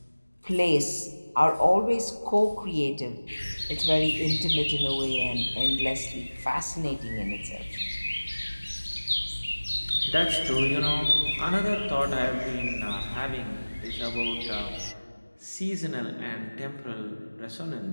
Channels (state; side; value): inverted; both; correlation -1.00